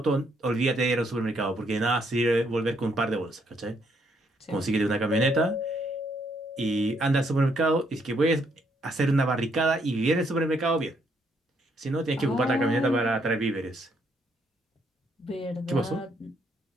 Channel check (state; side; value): normal; both; correlation 0.72